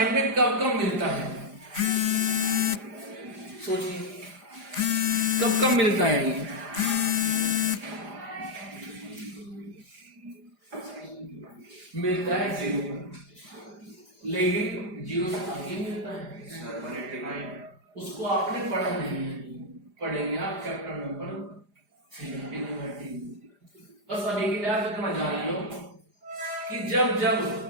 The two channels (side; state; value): left; late; 4.9 ms